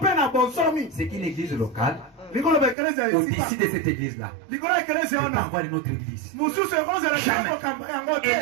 C'est qu'une église locale, au-dessus de cette église-là, on peut avoir une autre église. Jamais.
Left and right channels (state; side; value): drops out; left; at 2.8 s